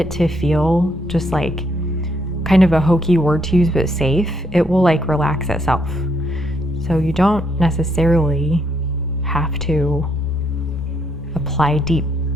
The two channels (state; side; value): normal; both; correlation 0.73